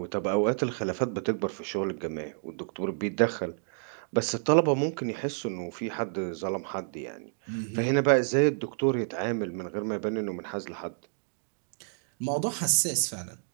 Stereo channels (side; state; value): left; silent; digital silence